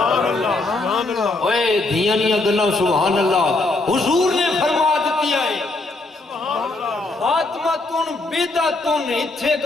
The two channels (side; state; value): right; quieter; 3.1 dB